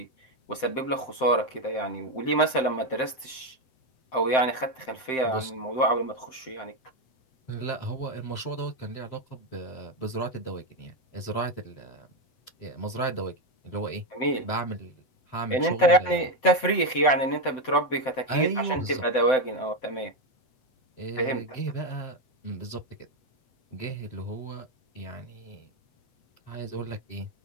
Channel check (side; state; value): right; late; 7.7 ms